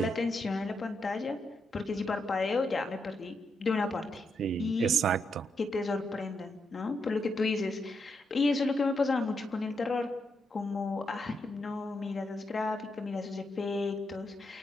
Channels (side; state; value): both; normal; correlation 0.81